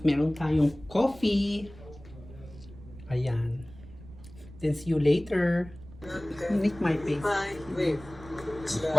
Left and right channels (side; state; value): right; noise; rumble, 18 dB below the sound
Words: meron tayong coffee. Ayan. Then see you later. Make my face.